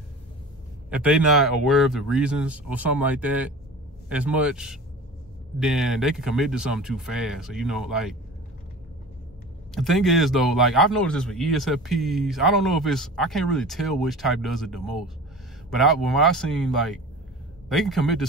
if they not aware of the reasons or something like that as much, then they can commit to something too fast. So, like, the thing is though, like I've noticed this with ESFPs. I don't know if I can't really tell which type does it the most. But when I seen, like, they can commit to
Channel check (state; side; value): normal; both; correlation 0.37